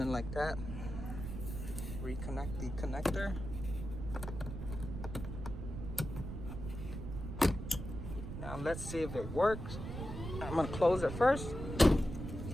like that, reconnect the connector. Now let's see if it works. I'm gonna close it first.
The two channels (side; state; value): right; noise; rumble, 7 dB below the sound